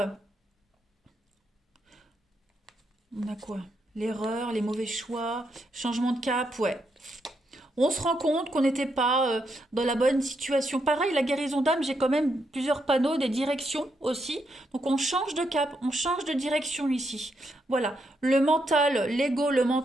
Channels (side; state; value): both; normal; correlation 0.80